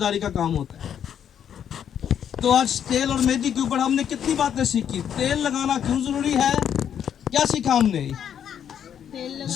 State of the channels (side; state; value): right; quieter; 9.0 dB